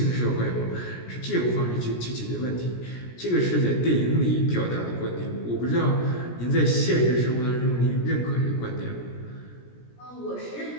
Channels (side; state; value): right; late; 17 ms